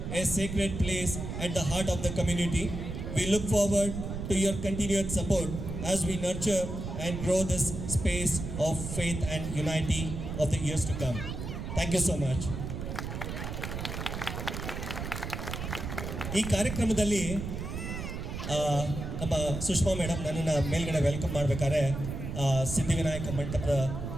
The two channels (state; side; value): noise; right; rumble, 6 dB below the sound